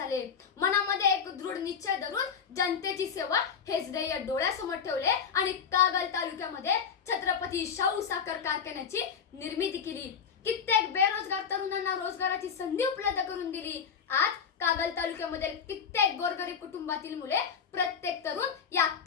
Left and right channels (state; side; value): quieter; right; 6.8 dB